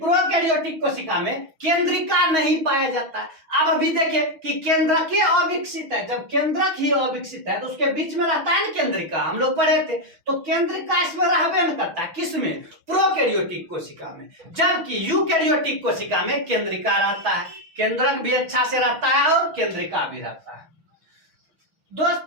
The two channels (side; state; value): left; late; 6.2 ms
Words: कोशिका में केंद्रिका नहीं पाया जाता है। अब अभी देखिए कि केंद्रक ही अविकसित है। जब केंद्रक ही अविकसित है तो उसके बीच में रहता है ना केंद्रिका, हम लोग पढ़े थे। तो केंद्रिका इसमें रहबे न करता है, किसमें? प्रोकैरियोटिक कोशिका में। जबकि यूकैरियोटिक कोशिका में केंद्रिका रहता है, केंद्रक भी अच्छा से रहता है और केंद्रिका भी रहता है।